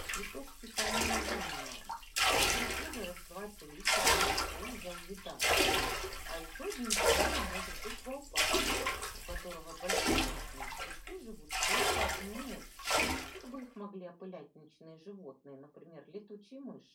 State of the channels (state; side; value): identical; both; correlation 1.00